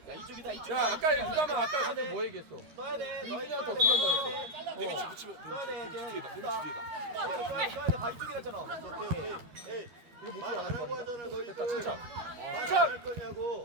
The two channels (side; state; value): left; late; 13 ms